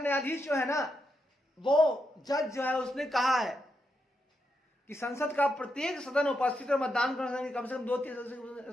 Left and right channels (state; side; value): normal; both; correlation 0.83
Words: जो है ना, वो जज जो है उसने कहा है कि संसद का प्रत्येक सदन उपस्थित और मतदान करने कम से कम